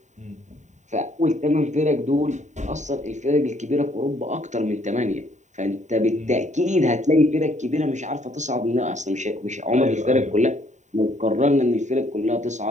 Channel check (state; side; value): late; left; 0.34 ms